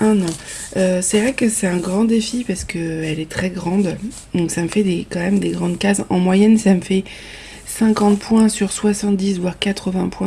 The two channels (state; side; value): identical; both; correlation 1.00